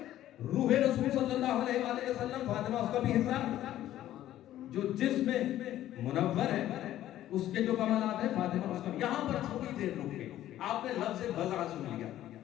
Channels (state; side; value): quieter; right; 13.1 dB